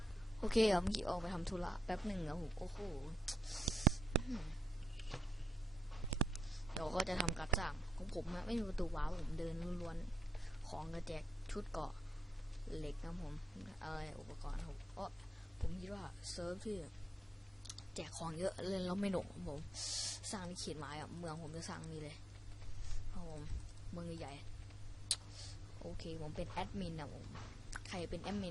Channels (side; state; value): both; normal; correlation 0.82